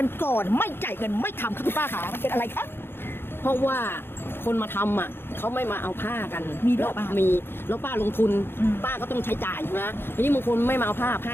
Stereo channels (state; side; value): late; right; 0.11 ms